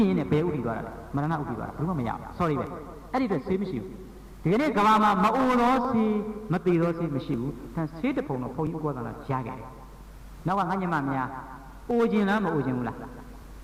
နဲ့ဘယ်ဥတည်သွားတာလဲမရဏဥတည်သွားတာဘယ်မှမရဘူး sorry ပဲအဲ့ဒီအတွက်ဆေးမရှိဘူးဒီကနေ့ကဘာမှာမအိုတော့ဆေးမတည်တော့ဆေးမရှိဘူးဒါဆေးတပုံတော့ဘုန်းကြီးဥပဒနာကြားခဲ့တယ်နောက်ကငါညမများအိုခြင်းလားမအိုခြင်းဘူးလား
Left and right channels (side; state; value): both; identical; correlation 1.00